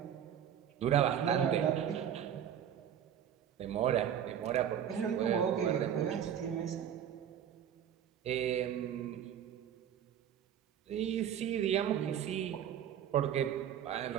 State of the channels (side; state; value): left; quieter; 9.5 dB